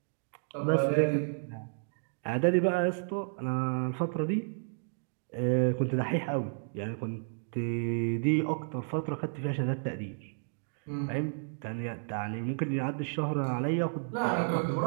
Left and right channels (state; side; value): silent; left; digital silence